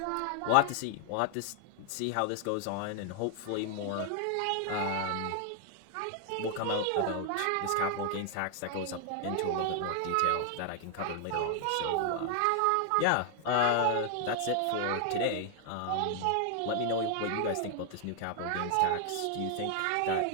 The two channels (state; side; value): different; both; correlation 0.00